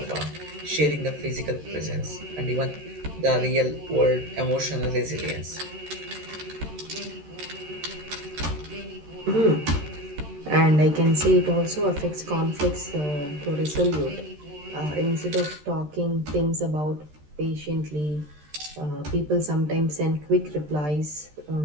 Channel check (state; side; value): late; left; 13 ms